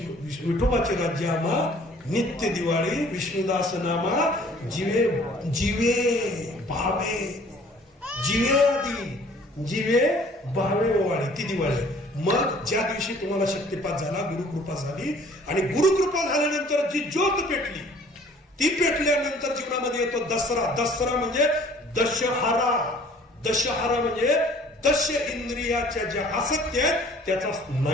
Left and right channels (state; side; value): normal; both; correlation 0.54